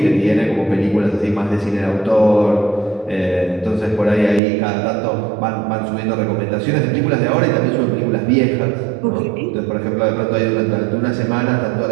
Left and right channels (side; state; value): left; drops out; at 4.4 s